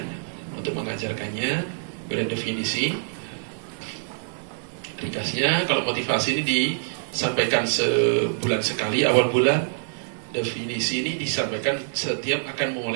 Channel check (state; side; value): silent; left; 62 dB below the other